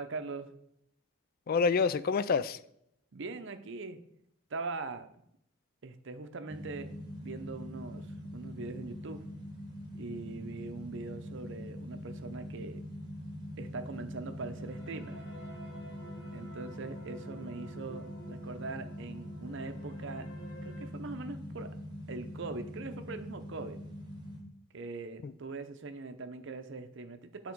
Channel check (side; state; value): both; normal; correlation 0.12